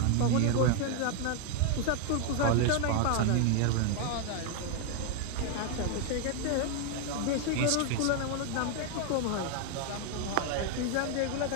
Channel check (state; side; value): different; both; correlation 0.01